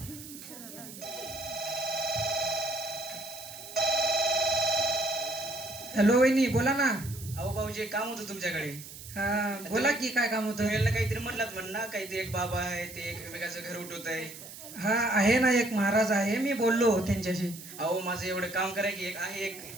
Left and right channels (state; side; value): noise; right; hiss, 14 dB below the sound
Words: हॅलो वहिनी, बोला ना. अहो भाऊजी एक काम होतं तुमच्याकडे. हा, बोला की काय काम होतं. तुम्ही याला काहीतरी म्हणलात म्हण ना, काहीतरी एक बाबा आहे ते एकमेकाचं घर उठवत आहे. हा, आहे ना, एक महाराज आहे, मी बोललो त्यांच्याशी. अहो माझं एवढं काम करा की एक